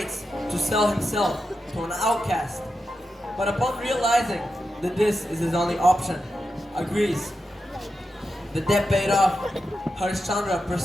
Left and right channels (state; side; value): normal; both; correlation 0.89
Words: to sell himself to an outcast, but upon realizing that this is his only option, agrees. The debt paid off, Harischandra